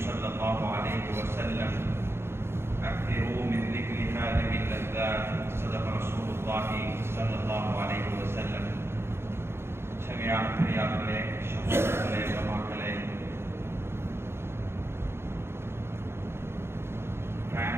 الله عليه وسلم أكثروا من ذكر هذه اللذات صدق رسول الله صلى الله عليه وسلم சங்கையான பெரியார்களே சகோதரர்களே உலமாக்களே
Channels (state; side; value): late; left; 0.12 ms